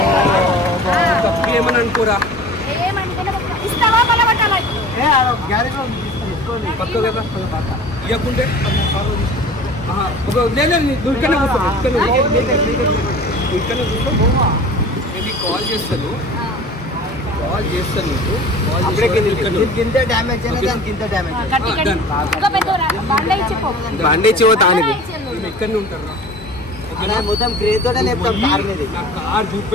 తప్పు ఏమని అనుకోరా పక్క కదా ఇవ్వకుంటే నేను కాల్ చేస్తాను ఇంత డ్యామేజ్ ఇంత డ్యామేజ్ బాండేజ్ ఎక్కడనే ఉంటారు మొత్తం క్రేజ్ తోటే లేపుతాం కార్ మీద నా కార్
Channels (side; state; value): both; normal; correlation 0.41